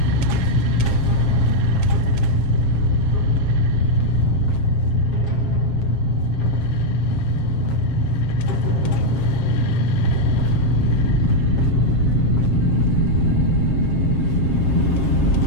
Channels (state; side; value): late; right; 7.5 ms